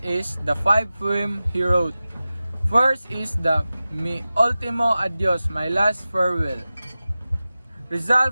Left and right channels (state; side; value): inverted; both; correlation -0.96